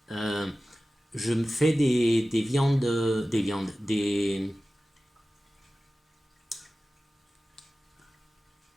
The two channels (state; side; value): normal; both; correlation 0.96